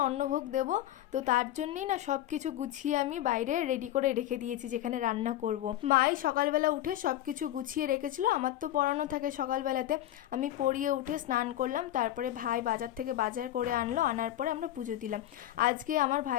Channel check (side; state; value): right; quieter; 13.2 dB